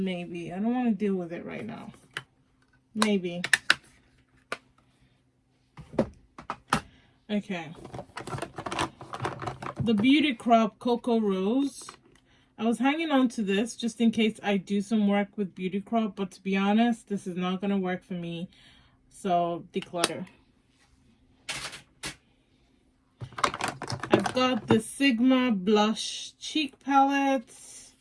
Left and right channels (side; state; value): both; identical; correlation 1.00